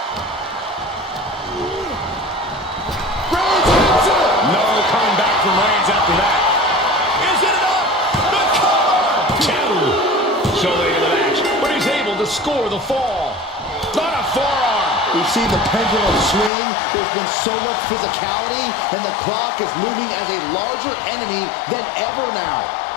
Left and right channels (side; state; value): right; drops out; at 16.5 s